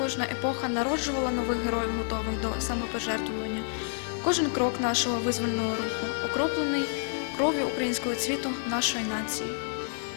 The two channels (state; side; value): silent; right; 59 dB below the other